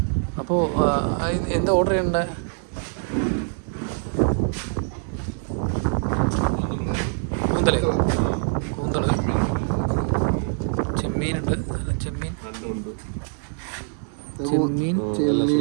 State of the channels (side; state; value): left; silent; 58 dB below the other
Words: അപ്പോൾ എന്താ ഓർഡർ ചെയ്യണ്ടേ? കൂന്തല് ചെമ്മീനുണ്ട്. ചെമ്മീൻ